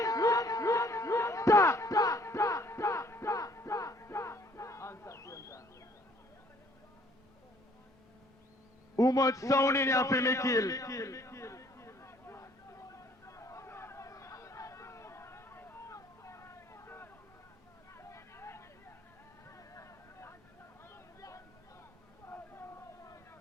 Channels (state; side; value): normal; both; correlation 0.61